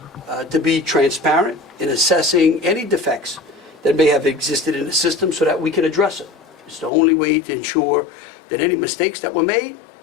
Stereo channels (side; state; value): right; drops out; at 6.9 s